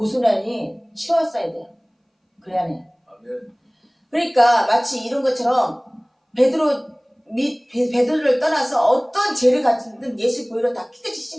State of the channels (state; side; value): identical; both; correlation 1.00